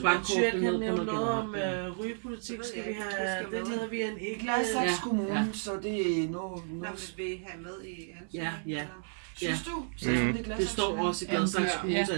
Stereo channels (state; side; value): silent; left; 56 dB below the other